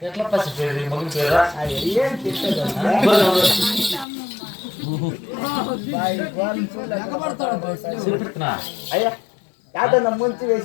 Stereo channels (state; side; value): drops out; right; at 4.0 s